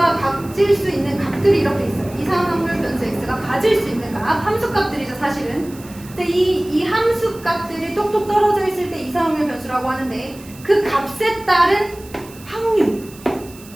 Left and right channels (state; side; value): noise; right; hiss, 21 dB below the sound